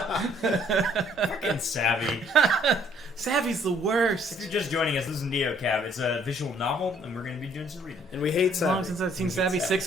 Fucking Savvy. Savvy's the worst. If you're just joining us, this is NeoCab. It's a visual novel, and we're going to be doing some reading. And we hate As long Savvy. since I've seen We hate Savvy, Savvy.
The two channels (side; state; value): both; normal; correlation 0.62